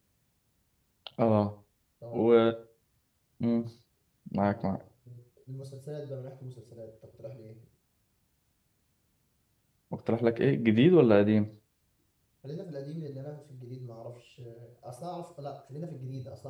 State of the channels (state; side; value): identical; both; correlation 1.00